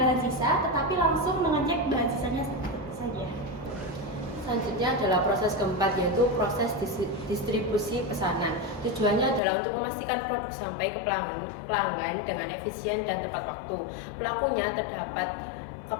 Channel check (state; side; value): drops out; right; at 9.4 s